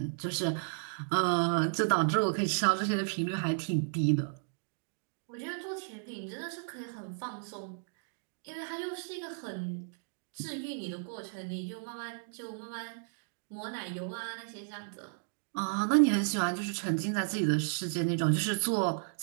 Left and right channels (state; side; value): silent; left; digital silence